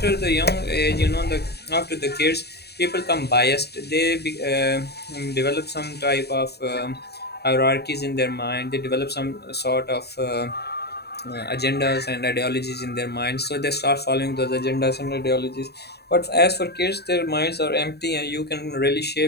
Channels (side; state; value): right; late; 0.47 ms